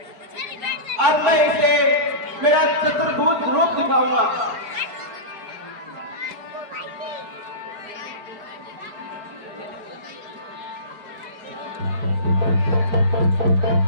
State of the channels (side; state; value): left; late; 4.8 ms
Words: अब मैं इसे मेरा चतुर्भुज रूप दिखाऊंगा।